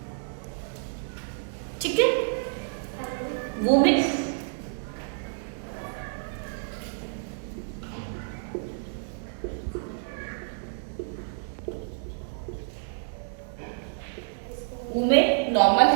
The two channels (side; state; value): left; silent; digital silence